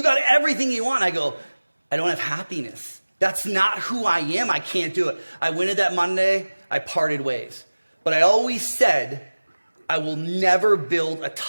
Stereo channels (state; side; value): inverted; both; correlation -1.00